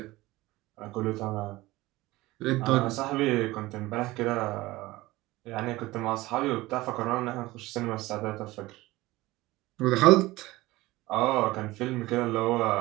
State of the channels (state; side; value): quieter; left; 19.1 dB